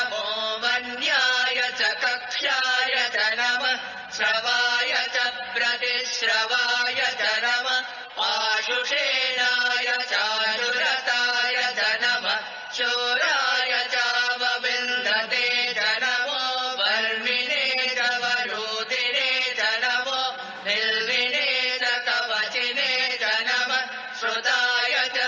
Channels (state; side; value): identical; both; correlation 1.00